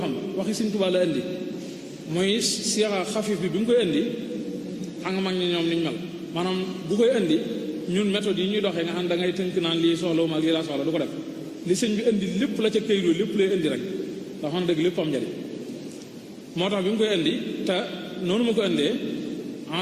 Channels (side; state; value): both; identical; correlation 1.00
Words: waxi Sëñ Tuubaa la indi muy siyaxa xafif bi mu koy indi xam nga mag ñi ñoom niñ mel maanaam bu koy indi ñun méthode yi ñuy doxee nga xam da ngay tënk naan lii soxla ma ak lii laa soxla du ko def li sëñ bi indi lépp la ca këyit lépp lay indi rek ndax xam dëgg lépp am njariñ moo tax bi mu koy indi te noonu ma ko indee